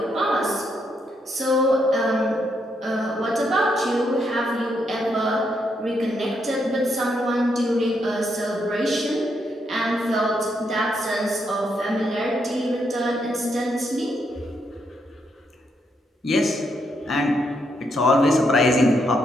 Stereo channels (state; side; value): normal; both; correlation 0.78